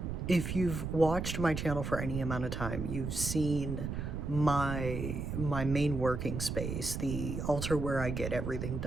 if you've watched my channel for any amount of time, you've seen my main working space, the altar where I get everything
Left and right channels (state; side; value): noise; right; rumble, 4 dB below the sound